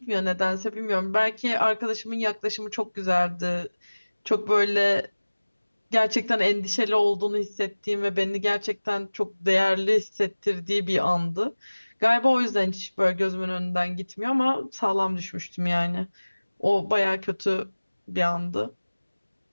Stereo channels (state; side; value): inverted; both; correlation -1.00